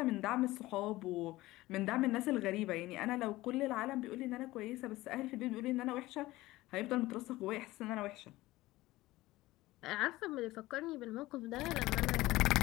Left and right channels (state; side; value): quieter; right; 18.1 dB